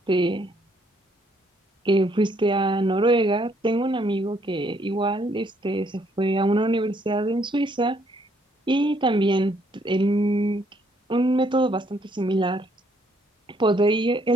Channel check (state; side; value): normal; both; correlation 0.68